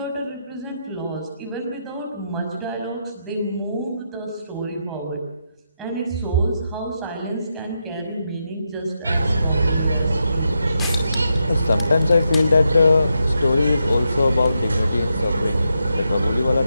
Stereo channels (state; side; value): inverted; both; correlation -0.84